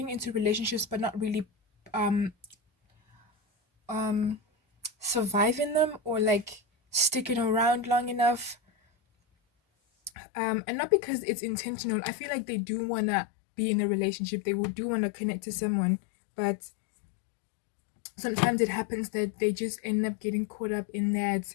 into relationships but not really um um surviving them, or like sticking around long enough, and not because it's intentional. I feel like they do want to be in a relationship, they will do want to connect to someone, but sometimes it happens that they just end up getting caught up in that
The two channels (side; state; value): right; drops out; at 10.1 s